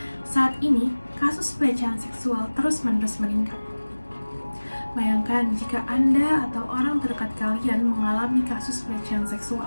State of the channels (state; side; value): inverted; both; correlation -1.00